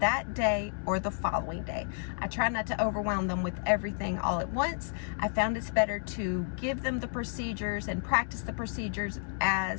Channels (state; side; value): silent; right; 57 dB below the other